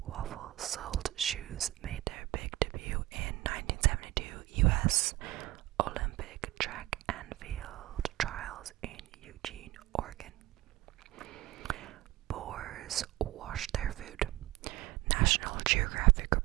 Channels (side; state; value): left; quieter; 17.0 dB